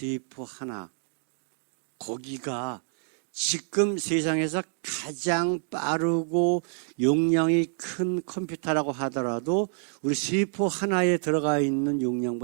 하나, 거기가 지금 세상에서 가장 빠르고 용량이 큰 컴퓨터라고 하더라도 우리 세포 하나에 들어가 있는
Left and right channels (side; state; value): left; silent; digital silence